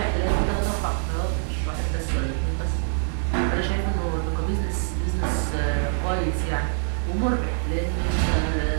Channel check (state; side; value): silent; left; digital silence